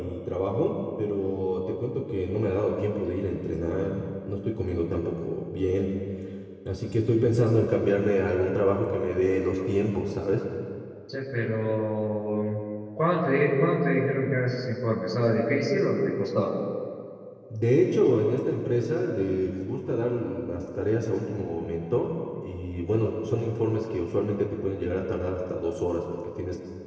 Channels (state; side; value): identical; both; correlation 1.00